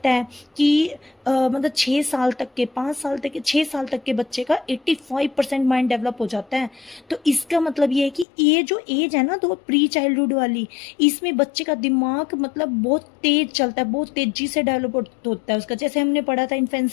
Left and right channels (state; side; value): drops out; right; at 8.2 s